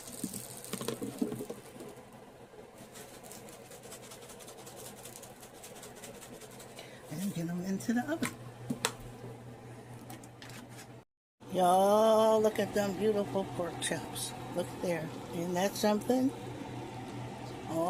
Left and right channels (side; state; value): both; identical; correlation 1.00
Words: And get them into the oven. Y'all, look at them beautiful pork chops. Look there. Isn't that something?